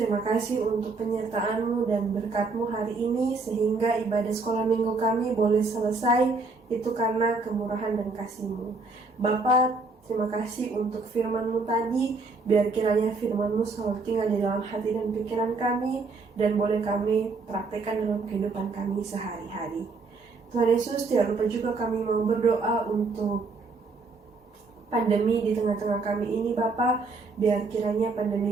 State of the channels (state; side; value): quieter; left; 3.9 dB